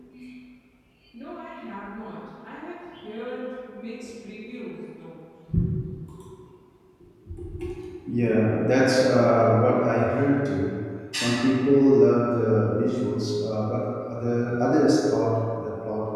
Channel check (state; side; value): identical; both; correlation 1.00